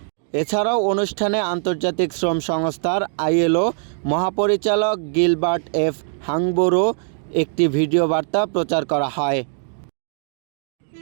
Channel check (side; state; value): left; silent; 65 dB below the other